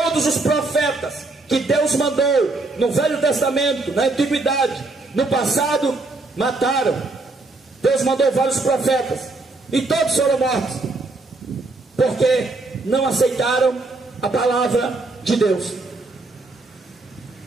os profetas que Deus mandou no Velho Testamento, na Antiguidade, no passado, mataram. Deus mandou vários profetas e todos foram mortos, porque não aceitaram a palavra de Deus.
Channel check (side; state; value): left; quieter; 3.3 dB